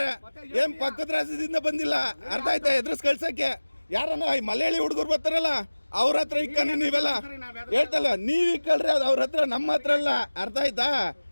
ಏನ್ ಪಕ್ಕದ ರಾಜ್ಯದಿಂದ ಬಂದಿಲ್ಲ ಅರ್ಥ ಆಯ್ತಾ ಎದುರಿಸ್ ಕಳ್ಸಕ್ಕೆ ಯಾರನ್ನ ಮಲಯಾಳಿ ಹುಡುಗರು ಬರ್ತಾರಲ್ಲ ಅವ್ರ ಹತ್ರ ಇಕ್ಕ ನೀವೆಲ್ಲ ಹೇಳ್ತಲ್ಲ ನೀವ್ ಇಕ್ಕಳ್ರಿ ಅದು ಅವ್ರ ಹತ್ರ ನಮ್ಮ ಹತ್ರ ಅಲ್ಲ ಅರ್ಥ ಆಯ್ತಾ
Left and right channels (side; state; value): both; inverted; correlation -1.00